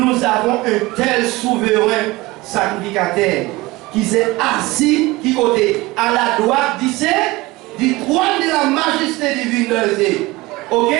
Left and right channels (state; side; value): quieter; left; 21.0 dB